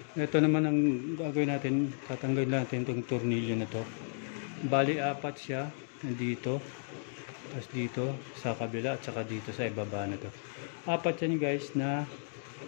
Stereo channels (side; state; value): right; silent; digital silence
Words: Ito naman ang gagawin natin, tatanggalin natin itong tornilyo na to. Bali 4 siya, nandito, tapos dito sa kabila at saka dito sa ibaba na to. 4 yan guys na